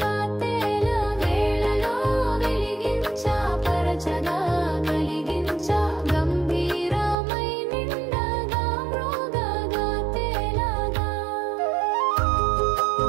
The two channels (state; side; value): drops out; left; at 7.2 s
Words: తేల వేళలో వెలిగించా పరచగా కలిగించా గంభీరమై నిండగా మృగగా తేలగా